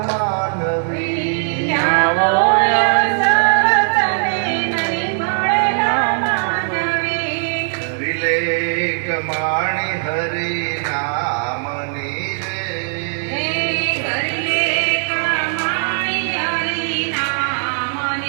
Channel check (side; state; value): left; silent; 67 dB below the other